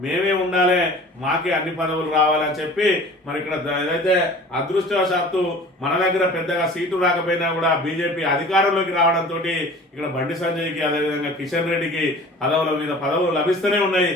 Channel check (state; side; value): normal; both; correlation 0.44